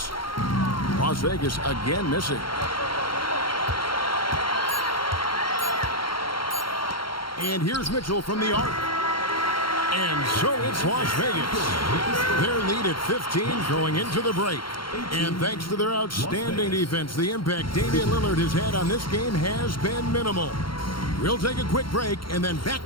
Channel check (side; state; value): right; late; 0.73 ms